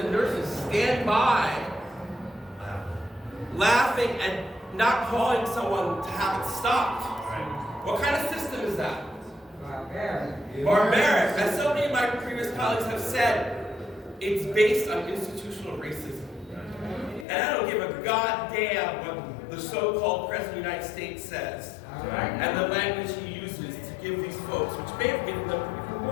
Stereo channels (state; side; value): drops out; right; at 17.2 s